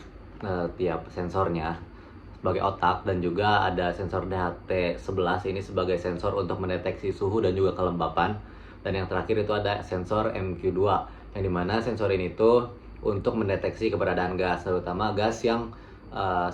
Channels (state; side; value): identical; both; correlation 1.00